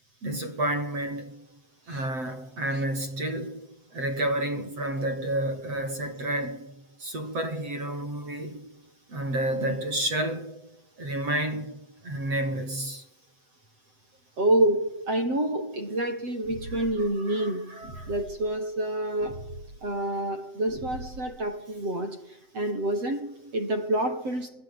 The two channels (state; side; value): late; left; 7.8 ms